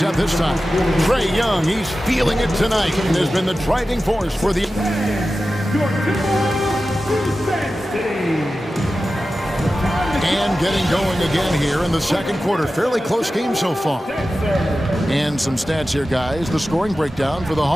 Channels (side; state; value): both; normal; correlation 0.94